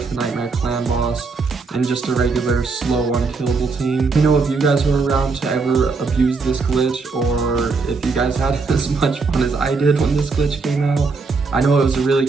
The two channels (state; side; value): quieter; left; 4.4 dB